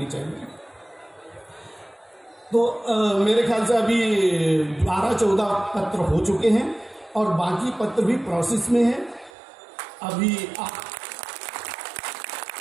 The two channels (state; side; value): drops out; left; at 9.3 s